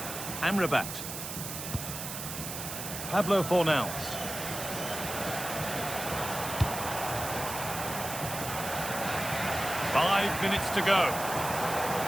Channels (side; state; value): right; noise; hiss, 7 dB below the sound